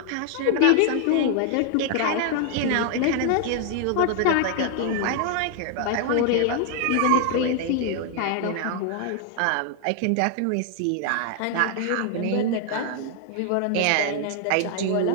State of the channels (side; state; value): both; different; correlation 0.00